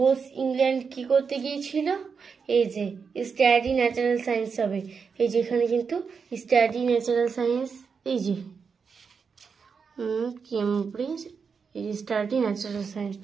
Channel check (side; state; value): left; quieter; 5.7 dB